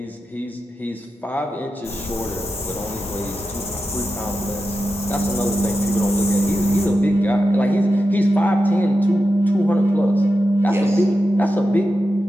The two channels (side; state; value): both; normal; correlation 0.90